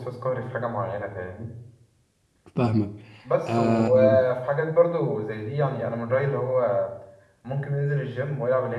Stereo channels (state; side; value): identical; both; correlation 1.00